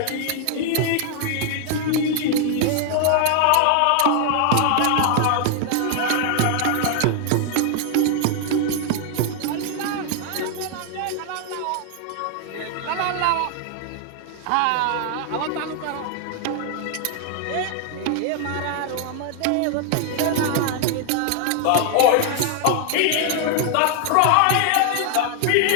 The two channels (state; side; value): different; both; correlation 0.00